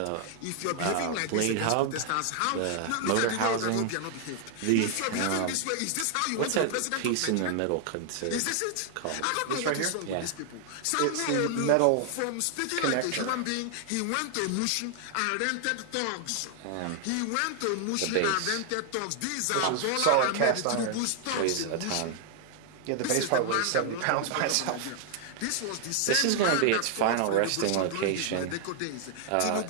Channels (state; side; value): different; both; correlation 0.00